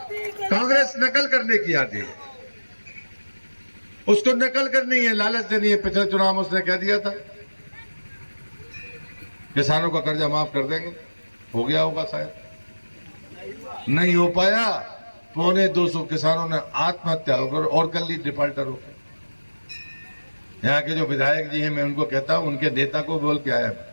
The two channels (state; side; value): inverted; both; correlation -1.00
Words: कांग्रेस नकल करने की आती है, उसको नकल करनी है, लालच देनी है। पिछले चुनाव में उसने कह दिया था किसानों का कर्जा माफ कर देंगे, हो गया होगा शायद, नहीं हो पाया। 225 किसानों ने आत्महत्या होकर और कर ली, डिफॉल्टर होकर। यहाँ के जो विधायक जी हैं, मैं उनको कहता हूं, उनके नेता को बोल के आया।